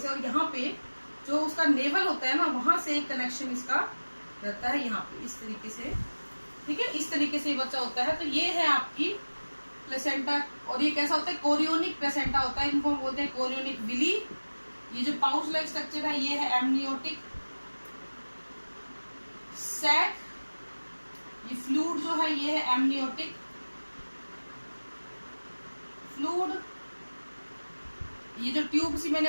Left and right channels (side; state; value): both; inverted; correlation -1.00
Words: और यहाँ पे जो उसका नेवल होता है ना, वहां से एक कनेक्शन इसका रहता है यहाँ पे इस तरीके से, ठीक है। इस तरीके से बच्चा होता है। तो ये है आपकी प्लेसेंटा, और ये कैसा होता है, कोरियोनिक प्लेसेंटा होता है, इनको हम बोलते हैं कोरियोनिक विली। ये जो पाउच लाइक स्ट्रक्चर है ये है एमनियोटिक सैक, ये फ्लूइड जो है ये है एमनियोटिक फ्लूइड, ये जो ट्यूब सी मैंने